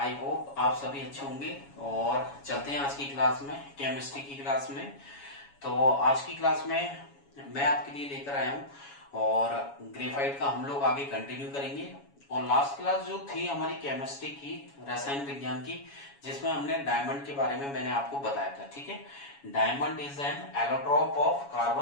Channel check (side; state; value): right; late; 7.2 ms